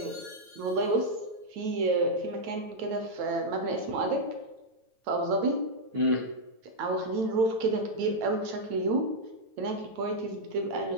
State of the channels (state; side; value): late; left; 9.1 ms